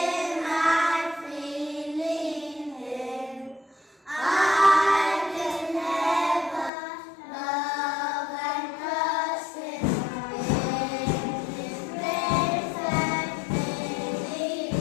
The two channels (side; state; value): right; drops out; at 6.7 s